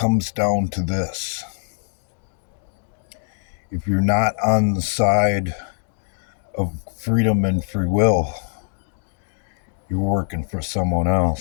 down to this. If you're not on the side of freedom and free will, you're working for someone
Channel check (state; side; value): silent; right; digital silence